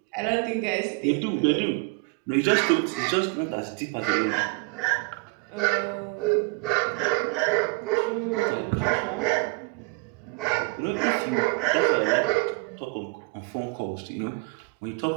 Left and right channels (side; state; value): left; quieter; 29.7 dB